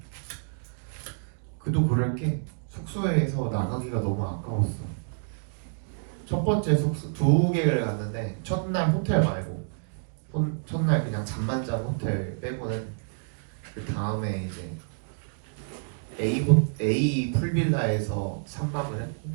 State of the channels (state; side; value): silent; left; digital silence